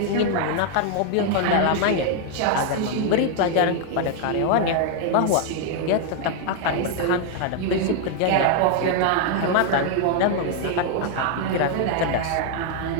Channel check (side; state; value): both; different; correlation 0.00